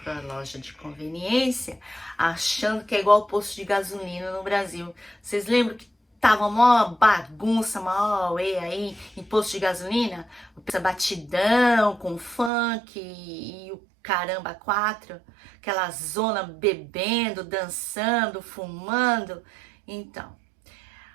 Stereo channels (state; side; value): drops out; left; at 12.5 s